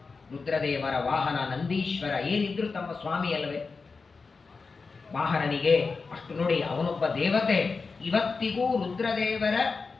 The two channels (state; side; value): quieter; right; 4.5 dB